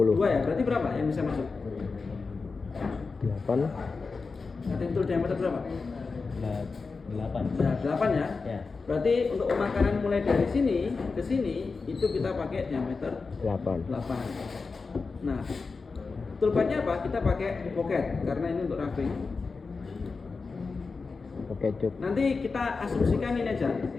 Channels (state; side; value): quieter; right; 4.4 dB